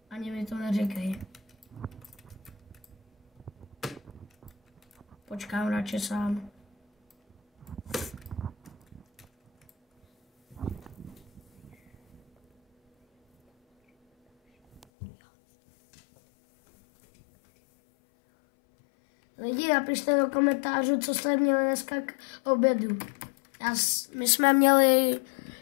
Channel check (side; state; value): right; drops out; at 14.9 s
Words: Ani mi to neříkej. Počkám radši sám. Lidi, napište do komentářů, co jste měli dneska k obědu. My jsme měli